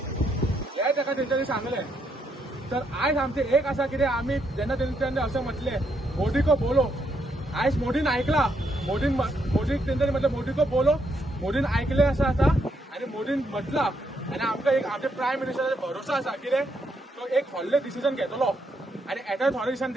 हे ताका तेंच्यांनी सांगलें। तर आयज आमचे एक आसा कितें आमी जेन्ना तेंच्यांनी अशें म्हटलें मोदी को बोलो आयज मोदीन आयकला मोदीक तेंच्यांनी म्हटलें मोदी को बोलो मोदीन आयकलें आसा आनी मोदीन म्हटलां आनी आमकां एक आमच्या प्रायम मिनिस्टराचेर भरोसा आसा कितें तो एक व्हडलें डिसिजन घेतलो आनी येत्या थोड्या दिसांनी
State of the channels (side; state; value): both; normal; correlation 0.76